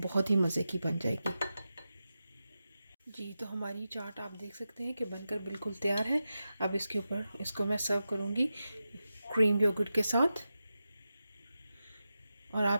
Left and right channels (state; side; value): inverted; both; correlation -0.91